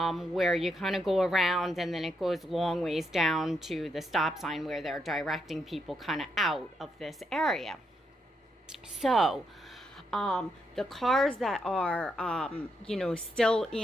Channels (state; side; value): normal; both; correlation 0.79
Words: where you kind of go around, and then it goes long ways down to the stop sign where they're directing people kind of out of this area. So, the cars that are, still